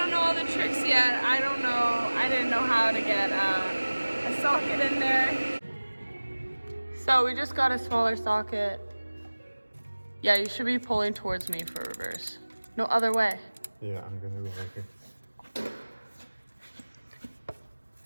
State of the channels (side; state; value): both; inverted; correlation -1.00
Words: know all the tricks yet. I didn't know how to get a socket in there. So we just got a smaller socket. Yeah, you should be pulling towards me for reverse. No other way. Yeah, I'm gonna go right here.